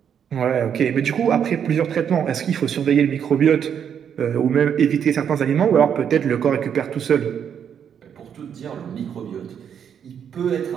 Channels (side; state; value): left; quieter; 8.2 dB